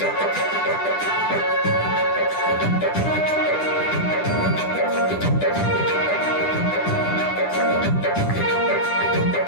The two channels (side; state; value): right; late; 10 ms